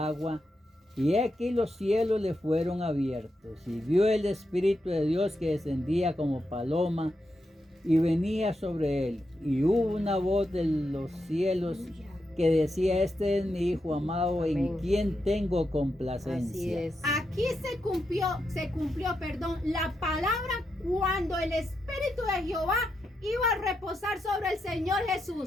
y aquí los cielos le fueron abiertos, y vio el Espíritu de Dios que descendía como paloma y venía sobre él. Y hubo una voz de los cielos que decía: este es mi Hijo amado, en Amén. quien tengo Así complacencia. es. Aquí se cumplió, la palabra cuando el Espíritu de Jehová iba a reposar sobre el Señor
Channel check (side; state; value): both; normal; correlation 0.85